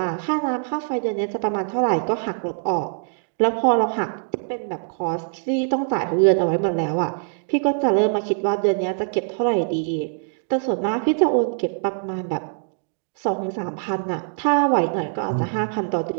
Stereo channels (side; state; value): left; silent; digital silence